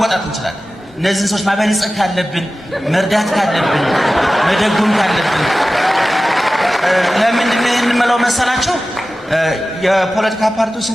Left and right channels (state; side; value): normal; both; correlation 0.96